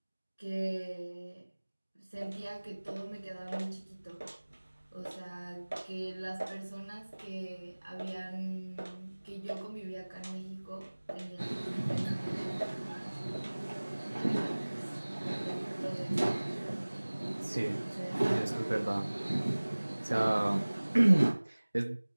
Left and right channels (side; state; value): both; inverted; correlation -1.00